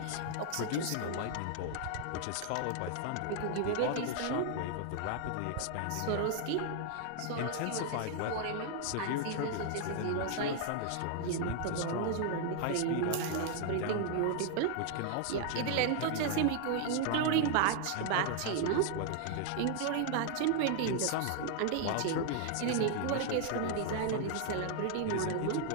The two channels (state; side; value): different; both; correlation 0.00